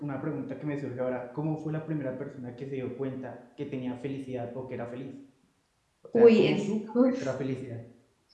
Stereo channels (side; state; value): both; identical; correlation 1.00